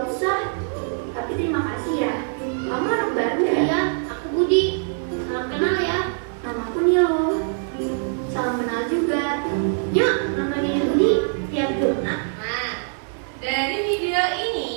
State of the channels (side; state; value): left; silent; digital silence